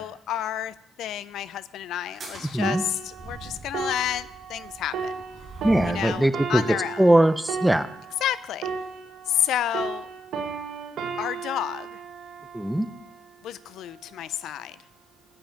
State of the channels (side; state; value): both; normal; correlation 0.82